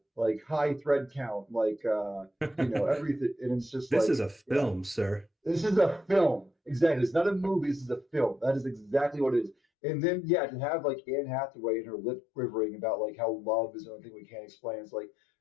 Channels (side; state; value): right; drops out; at 9.6 s